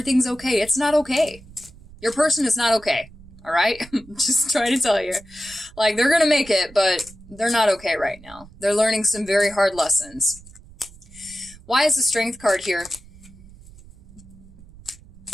okay. It's not okay. Your person is not okay. All right? Just trying to tell you. Like, they're going to make it, but they're not okay right now. They're learning some very hard lessons. Why is the Strength card here?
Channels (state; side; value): noise; right; rumble, 22 dB below the sound